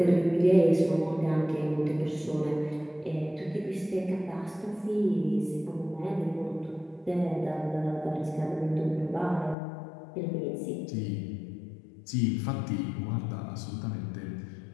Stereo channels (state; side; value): drops out; right; at 9.6 s